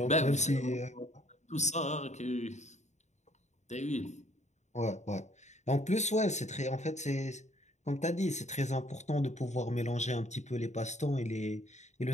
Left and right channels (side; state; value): right; late; 0.34 ms